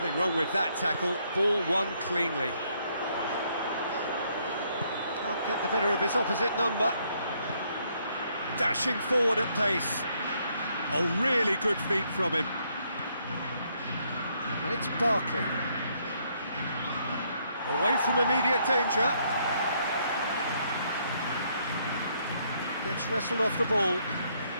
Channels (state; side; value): inverted; both; correlation -0.71